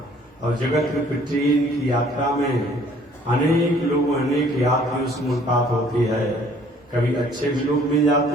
और जगत रूपी ट्रेन की यात्रा में अनेक लोग, अनेक यात्रियों से मुलाकात होती है। कभी अच्छे भी लोग मिल जाते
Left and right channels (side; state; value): both; normal; correlation 0.57